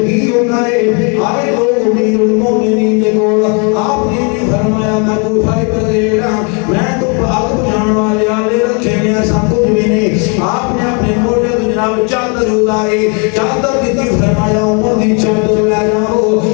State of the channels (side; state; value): right; quieter; 35.2 dB